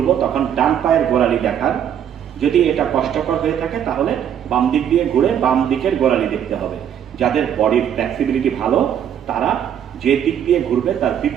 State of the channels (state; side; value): quieter; left; 9.3 dB